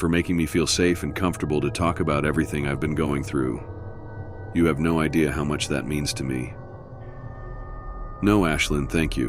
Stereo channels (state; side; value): identical; both; correlation 1.00